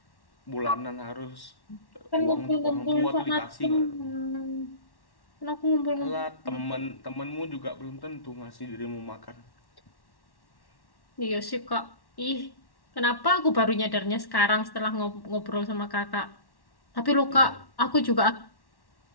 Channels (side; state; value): right; late; 1.1 ms